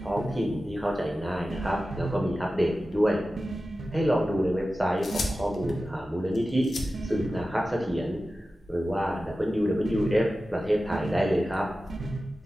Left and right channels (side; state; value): both; normal; correlation 0.94